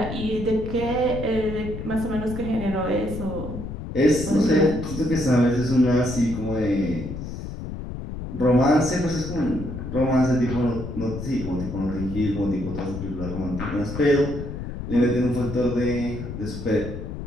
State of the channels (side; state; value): left; noise; rumble, 7 dB below the sound